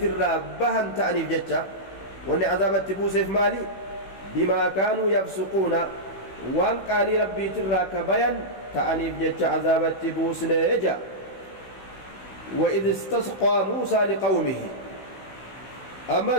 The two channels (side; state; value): right; late; 16 ms